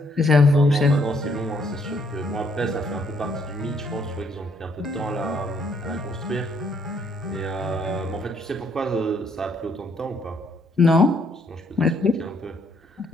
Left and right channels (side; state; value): both; normal; correlation 0.69